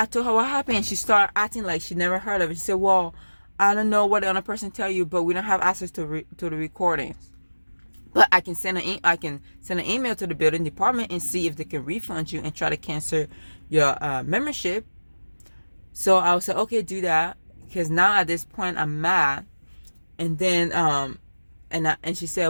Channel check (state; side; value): inverted; both; correlation -1.00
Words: told her what happened. She started acting like she never heard of it. She said, well, I don't know what the other person tell you, but we don't have access to the recordings. But I can send an email to the building department and see if they can refund you and try to cancel your membership. So I was like, okay, do that, because now at this point I'm mad. And then and she